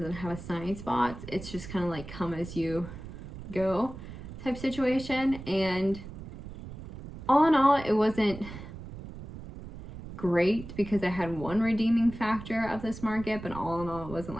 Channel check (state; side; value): noise; right; rumble, 12 dB below the sound